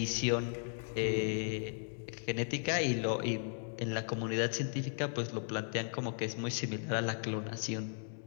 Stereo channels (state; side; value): silent; right; 54 dB below the other